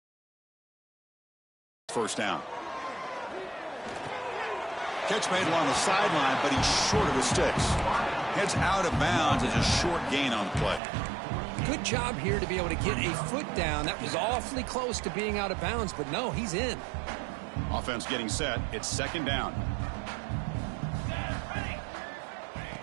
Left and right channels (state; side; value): drops out; left; at 10.8 s